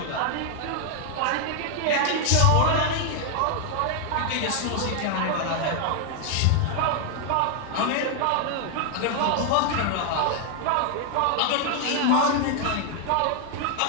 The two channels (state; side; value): different; both; correlation 0.00